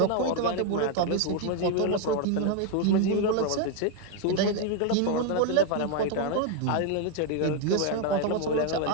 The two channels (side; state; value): both; different; correlation 0.01